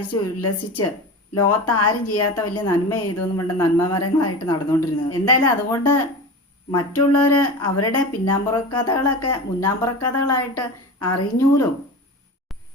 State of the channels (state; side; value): normal; both; correlation 0.30